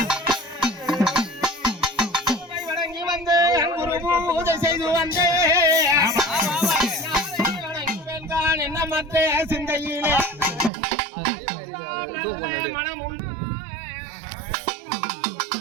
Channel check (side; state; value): left; drops out; at 10.7 s